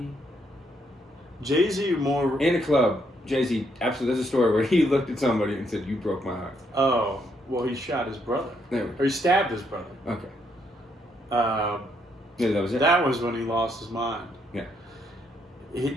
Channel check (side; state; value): both; normal; correlation 0.74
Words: Jay-Z more... In a club, Jay-Z, absolutely, there's a story where he looked at somebody and said, you broke my heart. Oh, well, he shot his brother. There we Or he stabbed his brother. Okay. Yeah, that was it. That was when he lost his mind. Yeah.